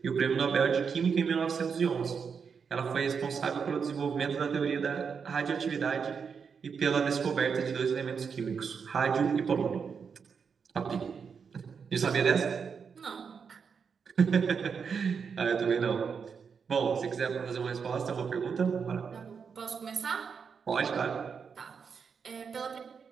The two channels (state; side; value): quieter; left; 6.2 dB